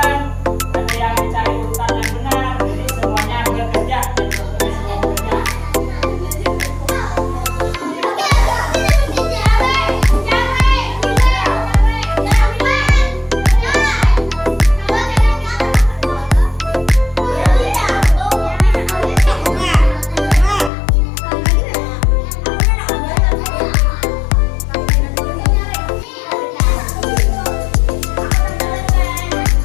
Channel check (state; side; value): drops out; right; at 20.7 s